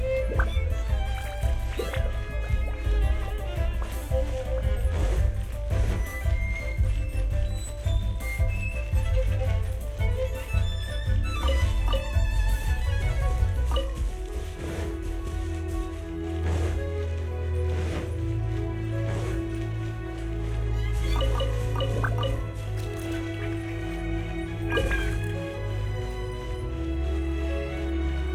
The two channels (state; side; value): identical; both; correlation 1.00